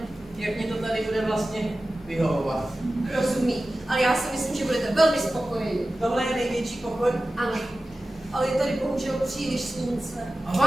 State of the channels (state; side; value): normal; both; correlation 0.95